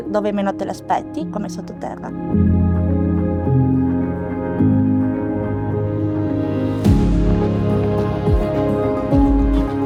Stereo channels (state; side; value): identical; both; correlation 1.00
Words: dove meno te l'aspetti, come sottoterra.